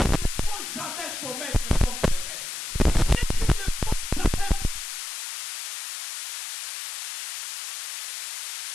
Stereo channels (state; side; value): noise; left; hiss, 7 dB below the sound